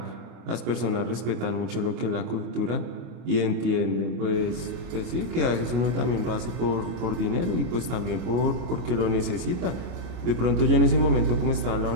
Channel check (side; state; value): left; late; 25 ms